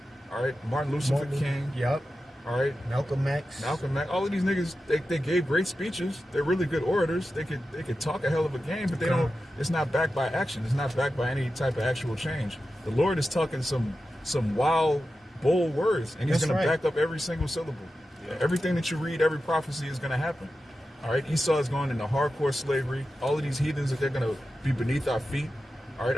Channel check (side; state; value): both; normal; correlation 0.92